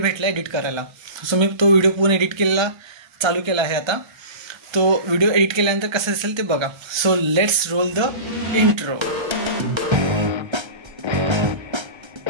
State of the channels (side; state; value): left; late; 1.3 ms